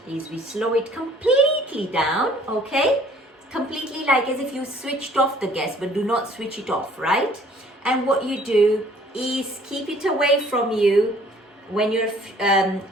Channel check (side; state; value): both; normal; correlation 0.56